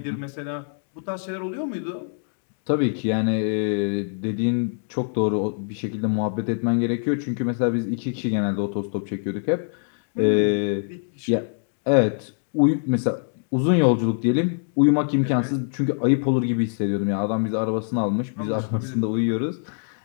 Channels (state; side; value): silent; right; digital silence